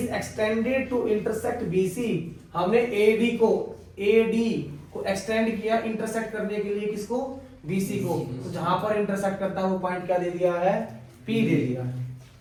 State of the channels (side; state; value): both; identical; correlation 1.00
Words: extended to intersect BC, हमने AD को एक्सटेंड किया इंटरसेक्ट करने के लिए, किसको? BC को। तो जहां पर इंटरसेक्ट करता है वो पॉइंट क्या दे दिया है? P दे दिया है,